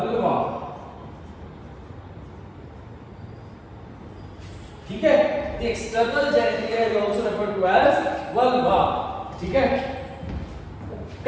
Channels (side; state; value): both; identical; correlation 1.00